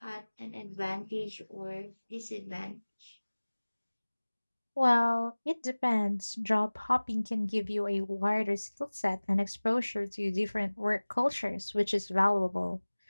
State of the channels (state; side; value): inverted; both; correlation -1.00